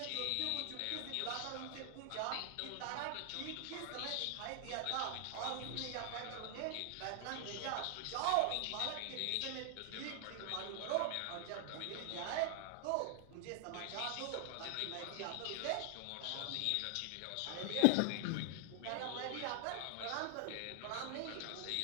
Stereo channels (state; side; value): different; both; correlation 0.00